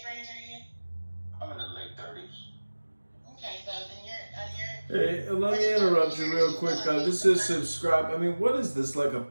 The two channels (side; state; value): both; inverted; correlation -1.00